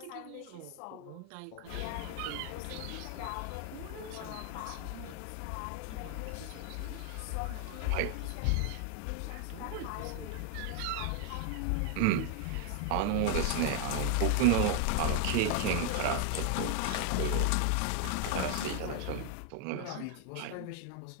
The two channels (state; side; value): different; both; correlation 0.00